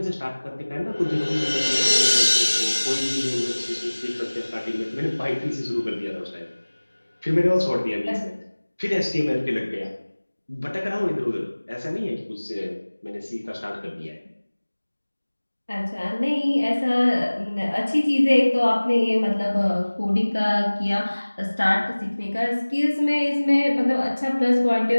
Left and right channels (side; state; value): both; inverted; correlation -1.00